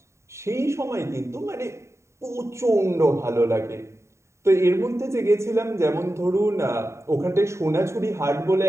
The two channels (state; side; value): late; left; 0.14 ms